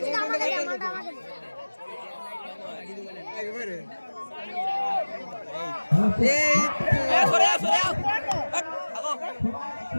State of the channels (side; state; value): both; inverted; correlation -1.00